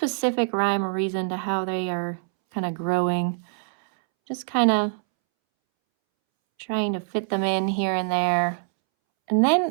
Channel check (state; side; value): silent; left; 62 dB below the other